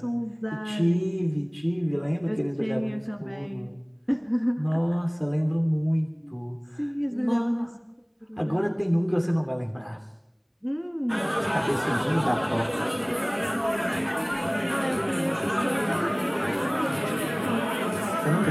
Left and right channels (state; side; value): identical; both; correlation 1.00